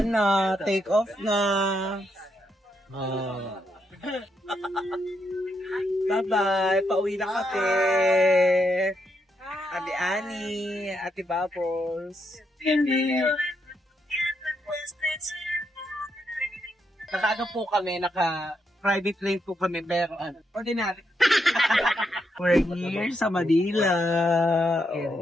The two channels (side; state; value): both; normal; correlation 0.79